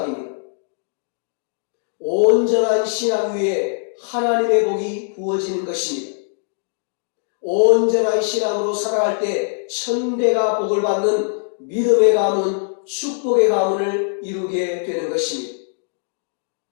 온전한 신앙 위에 하나님의 복이 부어지는 것입니다. 온전한 신앙으로 살아갈 때 천대가 복을 받는 믿음의 가문, 축복의 가문을 이루게 되는 것입니다.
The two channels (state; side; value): silent; right; digital silence